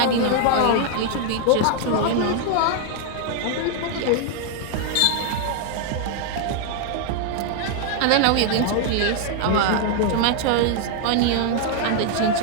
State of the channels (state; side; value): different; both; correlation 0.00